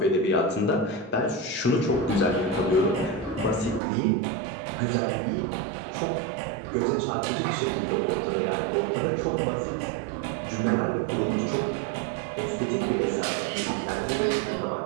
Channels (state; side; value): drops out; left; at 3.8 s